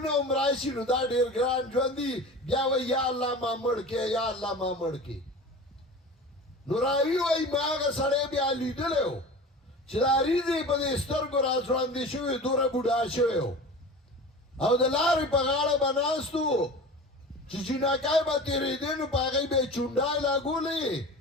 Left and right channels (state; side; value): normal; both; correlation 0.35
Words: عمرائشی نو دا دیر گران جواندی بیا وی یا اللہ ما مڑکے یا اللہ ما مڑکے نو راوی وی ما آغا سڑے بیا لیدلے ہو چدا ریزی پا دی سترگو راسواندی شوی دور بودا شوی ہو او دلاری پا غاڑا بناستو چی چیناکای با تیری دینو پا غی بے چونڈای لاغو لی